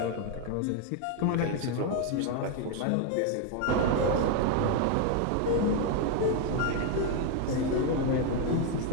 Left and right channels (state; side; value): different; both; correlation 0.01